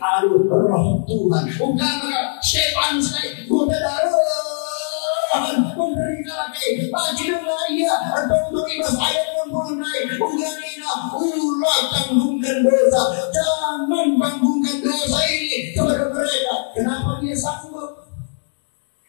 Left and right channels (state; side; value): silent; right; digital silence